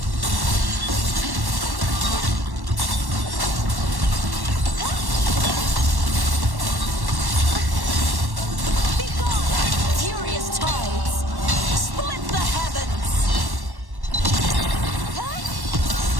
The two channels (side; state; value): left; late; 1.1 ms